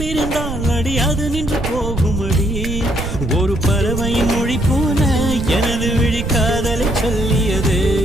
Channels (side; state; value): right; noise; rumble, 5 dB below the sound